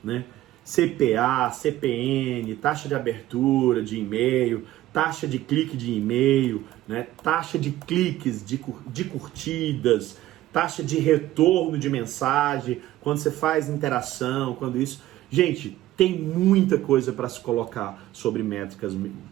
né? CPA, CPN, taxa de abertura de e-mail, taxa de clique de e-mail, né? Taxa de cliques, de curtidas, taxa de retorno de mensagem, quando você faz interação, quando isso... Gente, tem muita coisa para se colocar sobre métricas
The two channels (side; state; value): left; quieter; 15.0 dB